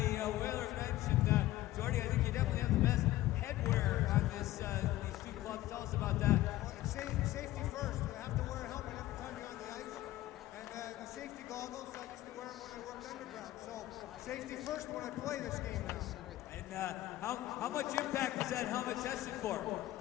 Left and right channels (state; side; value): quieter; right; 15.7 dB